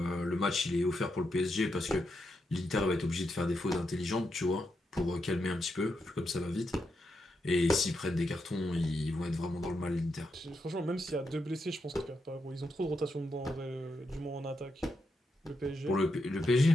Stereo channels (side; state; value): both; normal; correlation 0.83